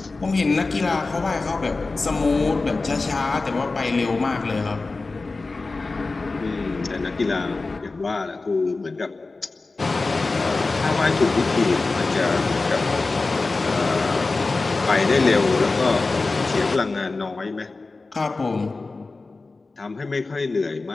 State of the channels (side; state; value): right; quieter; 3.6 dB